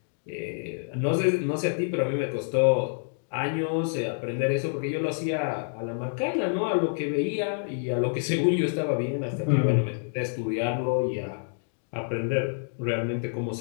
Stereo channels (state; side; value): silent; right; digital silence